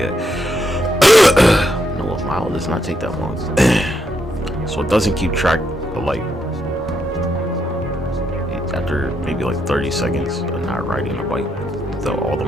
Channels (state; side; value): normal; both; correlation 0.78